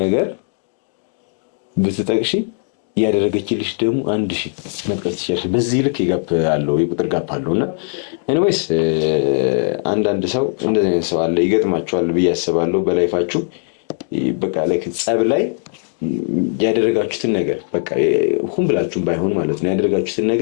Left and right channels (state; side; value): silent; right; 63 dB below the other